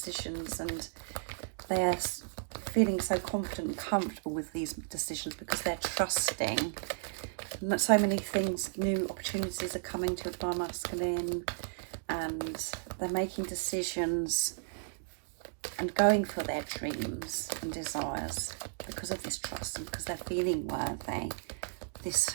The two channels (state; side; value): silent; left; digital silence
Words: and they're feeling so confident and comfortable with these decisions because they're trusting. And so many things, new opportunities are coming to a Divine Masculine, and they're making decisions and going for their dreams and desires because of this trust and because they're feeling worthy. This